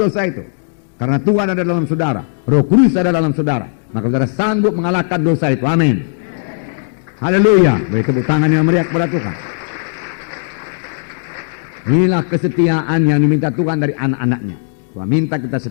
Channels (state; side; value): silent; right; digital silence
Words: itu. Karena Tuhan ada dalam saudara. Roh Kudus ada dalam saudara. Maka saudara sanggup mengalahkan dosa itu. Amin. Haleluya. Beri tepuk tangan yang meriah kepada Tuhan. Inilah kesetiaan yang diminta Tuhan dari anak-anaknya. Tuhan minta kita